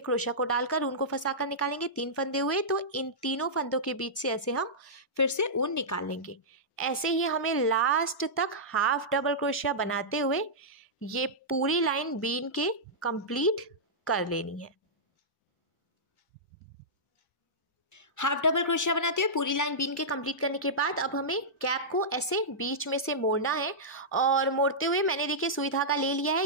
क्रोशिया को डालकर ऊन को फंसाकर निकालेंगे। 3 फंदे हुए तो इन तीनों फंदों के बीच से ऐसे हम फिर से ऊन निकाल लेंगे। ऐसे ही हमें लास्ट तक हाफ डबल क्रोशिया बनाते हुए ये पूरी लाइन बीन के कंप्लीट कर लेनी है। हाफ डबल क्रोशिया बनाते हुए पूरी लाइन बीन के कंप्लीट करने के बाद अब हमें कैप को ऐसे बीच में से मोड़ना है और मोड़ते हुए मैंने देखिए सुई धागा ले लिया है,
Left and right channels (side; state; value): both; normal; correlation -0.13